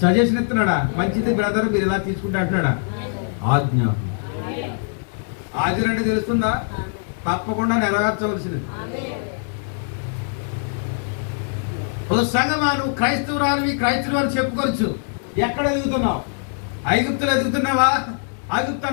ఇస్తున్నాడా? మంచిది బ్రదర్, మీరు ఇలా తీసుకుంటే అంటున్నాడా? ఆజ్ఞ. ఆజ్ఞ అంటే తెలుస్తుందా? తప్పకుండా నెరవేర్చవలసినది. ఓ సంగమా, నువ్వు క్రైస్తవురాలివి, క్రైస్తవులు అని చెప్పుకోవచ్చు. ఎక్కడ ఎదుగుతున్నావు? ఐగుప్తులు ఎదుగుతున్నావా? ఐగుప్తు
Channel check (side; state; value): right; silent; 59 dB below the other